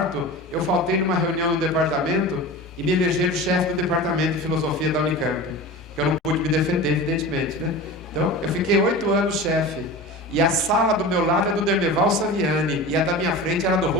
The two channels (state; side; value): normal; both; correlation 0.32